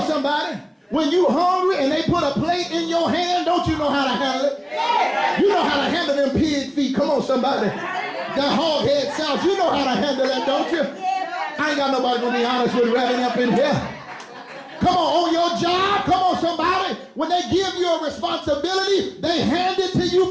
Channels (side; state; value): both; identical; correlation 1.00